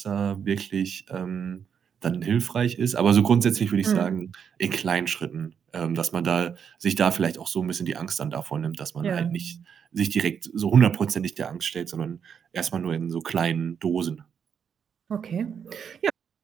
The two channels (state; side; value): quieter; left; 7.4 dB